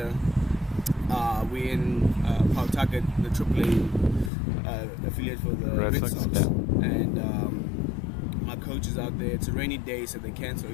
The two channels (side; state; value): right; drops out; at 4.3 s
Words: we're in Pawtucket, the AAA affiliate for the Red Sox. Yeah. And my coach is out there. It's a rainy day, so they cancel